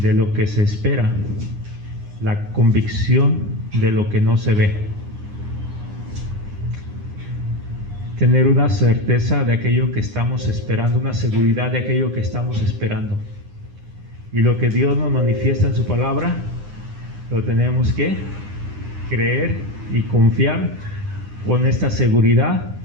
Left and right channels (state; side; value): late; left; 9.8 ms